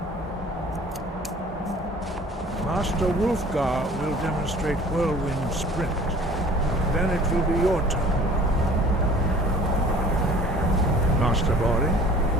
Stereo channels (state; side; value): normal; both; correlation 0.48